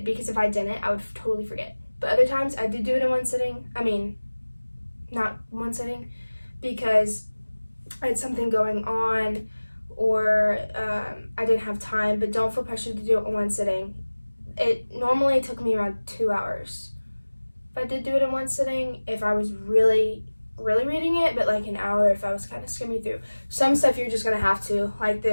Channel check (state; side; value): inverted; both; correlation -1.00